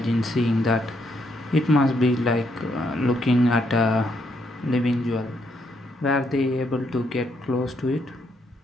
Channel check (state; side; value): normal; both; correlation 0.75